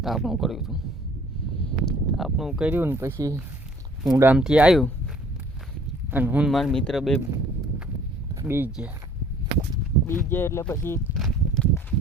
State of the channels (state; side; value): normal; both; correlation 0.55